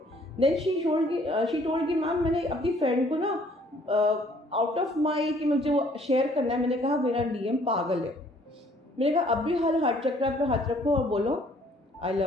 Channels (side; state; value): both; normal; correlation 0.60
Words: देन शी टोल्ड कि मैम मैंने अपनी फ्रेंड को ना आउट ऑफ माई कि मुझे वो शेयर करना है, मैंने कहा मेरा डीएम पागल है। मैंने कहा अभी हार्ट चक्र पे हाथ रखो और बोलो I